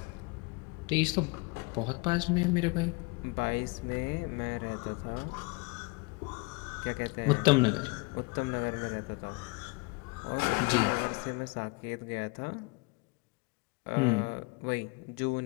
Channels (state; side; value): quieter; right; 27.4 dB